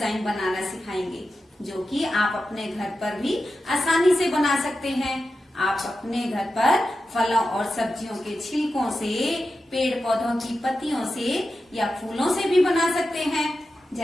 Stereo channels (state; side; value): normal; both; correlation 0.91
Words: बनाना सिखाएंगे, जो कि आप अपने घर पर भी आसानी से बना सकते हैं। आप अपने घर पर फलों और सब्जियों के छिलकों से, पेड़ पौधों की पत्तियों से या फूलों से भी बना सकते हैं।